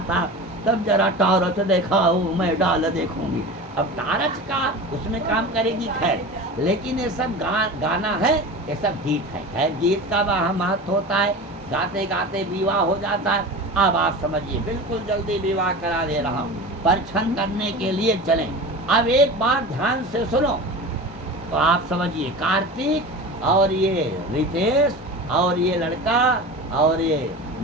था, तब जरा टारच देखा वो मैं डाल देखूंगी। अब टारच का उसमें काम करेगी खैर, लेकिन ये सब गाना है, ये सब गीत है। खैर गीत का वहाँ महत्व होता है, गाते गाते विवाह हो जाता है। अब आप समझिए बिल्कुल जल्दी विवाह करा दे रहा हूँ, परीक्षण करने के लिए चलें। अब एक बार ध्यान से सुनो तो आप समझिए, कार्तिक और ये रितेश और ये लड़का और ये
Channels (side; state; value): both; normal; correlation 0.32